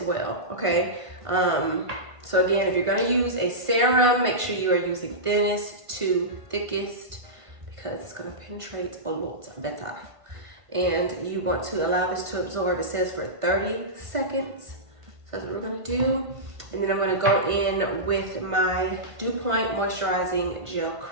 well, okay? So again, if you're gonna use a serum, make sure you are using thinnest to thickest because it's gonna penetrate a lot better. And you want to allow this to absorb, it says for 30 seconds. So that's what we're gonna do. And then I'm gonna go in with my Dew Point Moisturizing Gel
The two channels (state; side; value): late; left; 1.5 ms